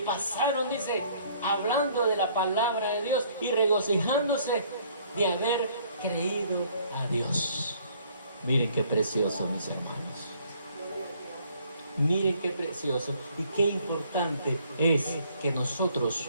pasaron, dice, hablando de la palabra de Dios y regocijándose de haber creído a Dios. Miren qué precioso, mis hermanos. Miren qué precioso y qué importante es que nosotros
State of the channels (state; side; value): inverted; both; correlation -0.61